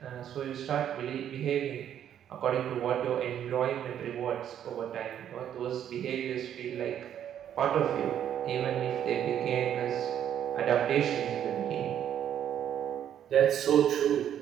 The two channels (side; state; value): left; quieter; 9.9 dB